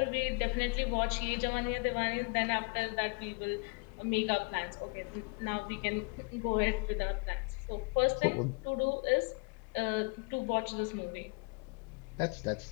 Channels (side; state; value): right; quieter; 32.5 dB